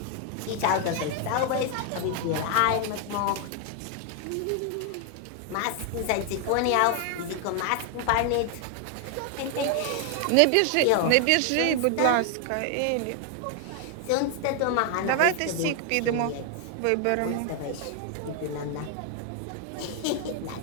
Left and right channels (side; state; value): both; different; correlation 0.00